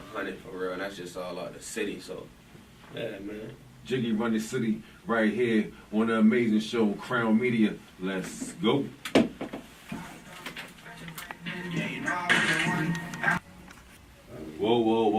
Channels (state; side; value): identical; both; correlation 1.00